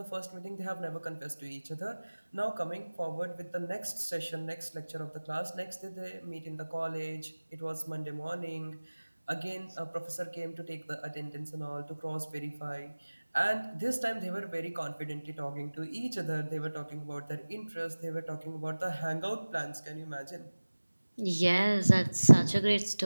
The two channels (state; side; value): inverted; both; correlation -1.00